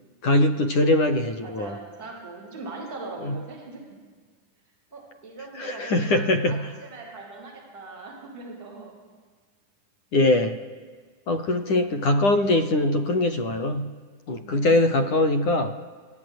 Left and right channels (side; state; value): right; late; 10 ms